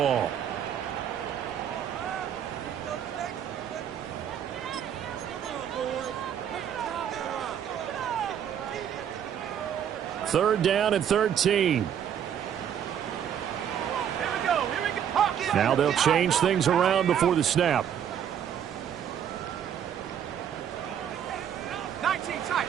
Third down and 13. Now they'll change things around before the snap.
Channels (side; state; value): left; quieter; 9.1 dB